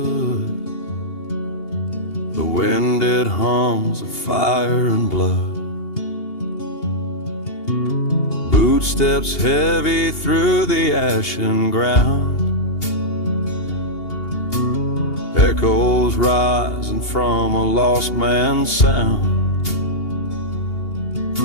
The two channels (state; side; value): late; right; 2.8 ms